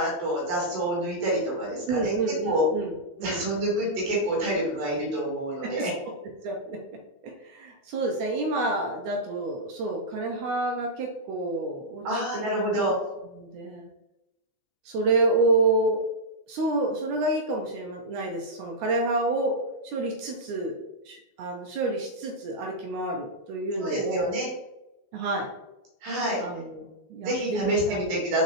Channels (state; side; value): late; left; 11 ms